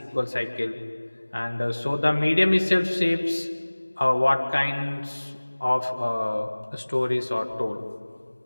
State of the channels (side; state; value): both; inverted; correlation -1.00